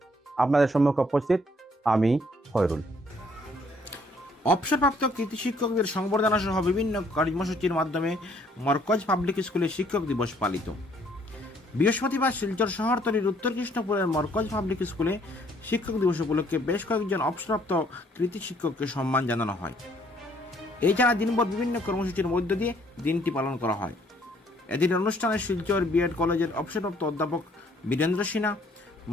আপনাদের সম্মুখে উপস্থিত আমি খয়রুল। অবসরপ্রাপ্ত কৃতি শিক্ষকদের সংবর্ধনা সহ বিভিন্ন কর্মসূচির মাধ্যমে মরকজ পাবলিক স্কুলে শিক্ষক দিবস পালিত। বৃহস্পতিবার শিলচর শহরতলির উত্তর কৃষ্ণপুরের মরকজ পাবলিক স্কুলে শিক্ষক দিবস উপলক্ষে বেশ কয়েকজন অবসরপ্রাপ্ত কৃতি শিক্ষককে সম্মান জানানো হয়। এছাড়া দিনভর বিভিন্ন কর্মসূচির মধ্য দিয়ে দিনটি পালন করা হয়। এদিন অনুষ্ঠানে শিলচর বিএড কলেজের অবসরপ্রাপ্ত অধ্যাপক বীরেন্দ্র সিনহা,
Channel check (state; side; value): normal; both; correlation 0.64